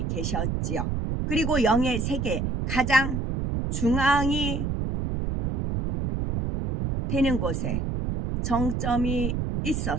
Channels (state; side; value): noise; right; rumble, 1 dB below the sound